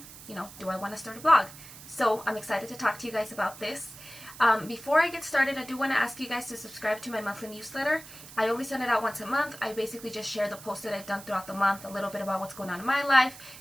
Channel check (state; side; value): noise; right; hiss, 16 dB below the sound